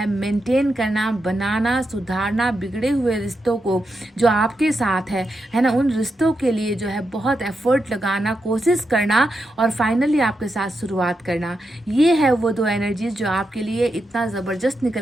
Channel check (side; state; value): both; normal; correlation 0.86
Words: मेंटेन करना, बनाना, सुधारना, बिगड़े हुए रिश्तों को जो आपके साथ है ना, उन रिश्तों के लिए जो है बहुत एफर्ट लगाना, कोशिश करना, और फाइनली आपके साथ शुरुआत करना। ये है वो 2 एनर्जीज जो आपके लिए इतना ज़बरदस्त